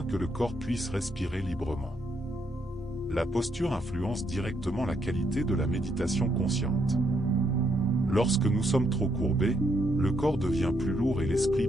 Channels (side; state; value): both; normal; correlation 0.75